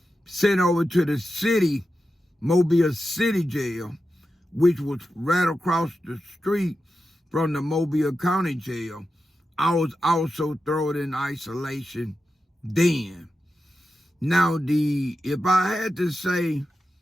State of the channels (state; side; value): normal; both; correlation 0.90